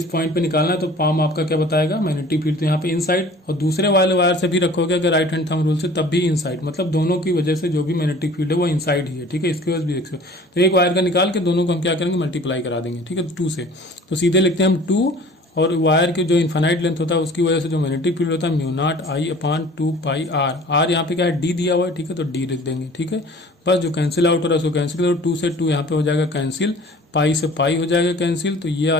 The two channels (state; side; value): normal; both; correlation 0.47